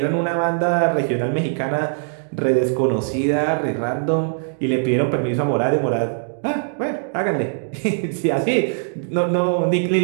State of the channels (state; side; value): silent; left; digital silence